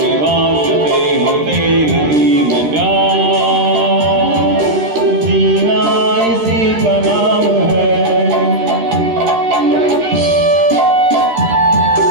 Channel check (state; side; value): late; left; 13 ms